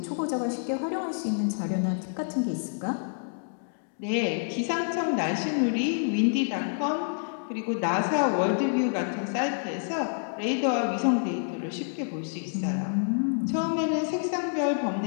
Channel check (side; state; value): right; silent; digital silence